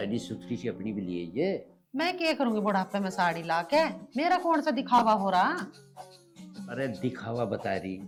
सुथरी सी अपनी भी लिए ये। मैं क्या करूंगी बुढ़ापे में साड़ी ला के, मेरा कौन सा दिखावा हो रहा? अरे दिखावा बता रही,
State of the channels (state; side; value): identical; both; correlation 1.00